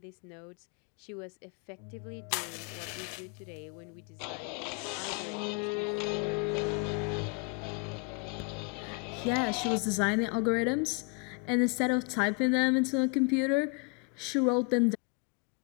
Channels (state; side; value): quieter; right; 33.9 dB